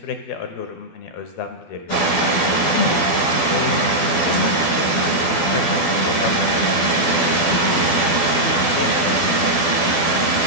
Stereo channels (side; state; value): right; late; 12 ms